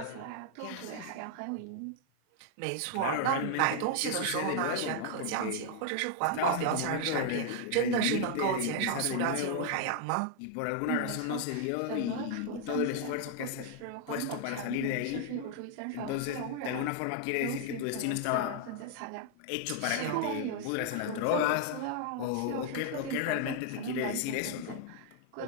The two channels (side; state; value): both; different; correlation 0.00